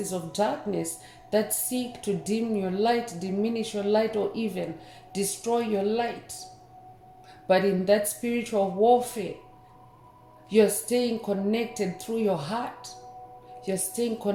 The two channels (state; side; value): identical; both; correlation 1.00